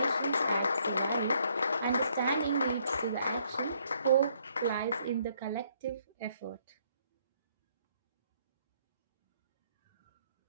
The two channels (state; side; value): inverted; both; correlation -0.69